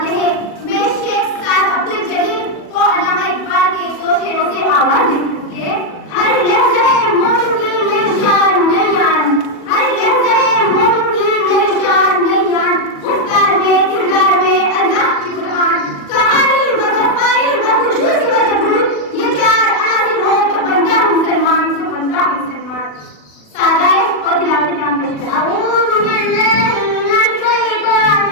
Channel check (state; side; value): late; right; 40 ms